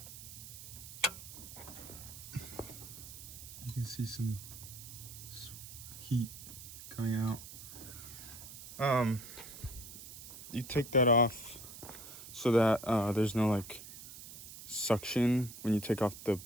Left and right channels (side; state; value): right; noise; hiss, 13 dB below the sound